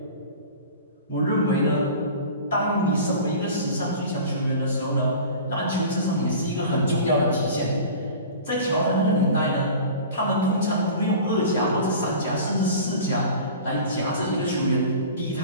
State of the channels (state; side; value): inverted; both; correlation -0.38